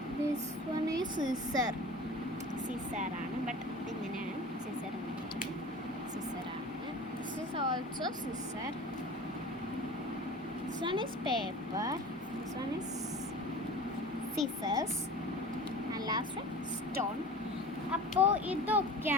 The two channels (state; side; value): normal; both; correlation 0.38